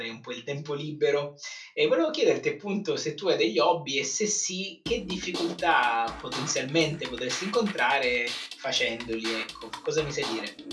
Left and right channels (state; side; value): identical; both; correlation 1.00